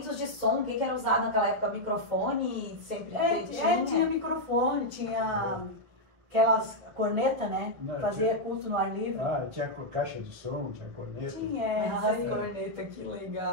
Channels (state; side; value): late; left; 2.2 ms